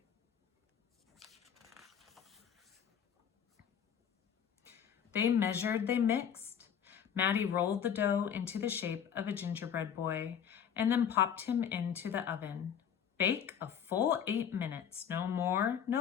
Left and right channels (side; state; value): right; quieter; 8.3 dB